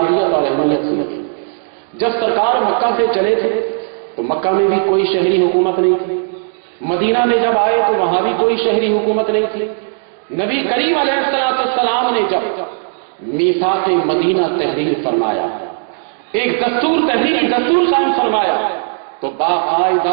اور اہمیت سنیے۔ جب سرکار مکہ سے چلے تھے تو مکہ میں بھی کوئی شہری حکومت نہیں تھی، مدینہ میں جب آئے تو وہاں بھی کوئی شہری حکومت نہیں تھی۔ نبی کریم علیہ السلام نے جب میثاق مدینہ تحریر فرمایا، ایک تحریری دستور قائم فرمایا، تو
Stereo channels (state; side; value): silent; left; digital silence